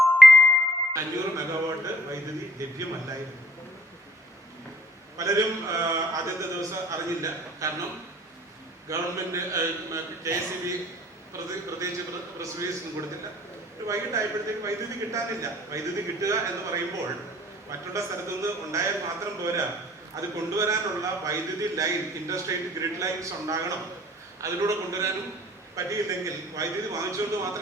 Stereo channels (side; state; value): both; normal; correlation 0.57